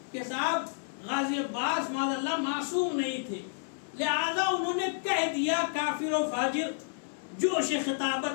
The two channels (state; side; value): silent; right; 57 dB below the other